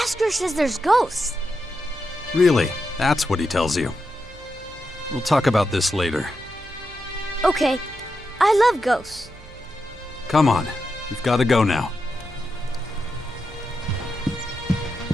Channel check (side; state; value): right; noise; hum, 20 dB below the sound